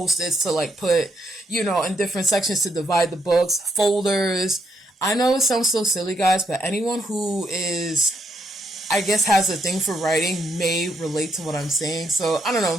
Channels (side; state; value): both; normal; correlation 0.77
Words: to like put, in different sections to divide the books, folders. I know it sounds so silly, guys, but anyone who is, I guess, has a thing for writing may relate to what I'm saying. So, I don't know.